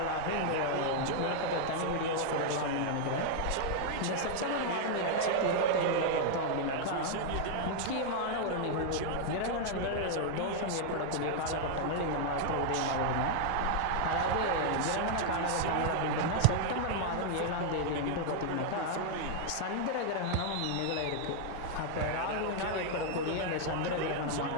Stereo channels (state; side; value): different; both; correlation 0.00